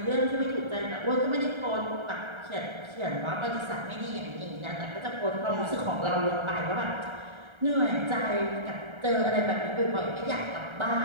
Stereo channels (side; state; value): left; late; 1.3 ms